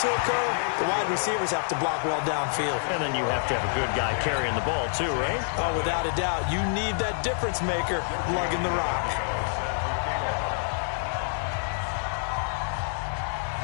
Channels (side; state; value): right; silent; digital silence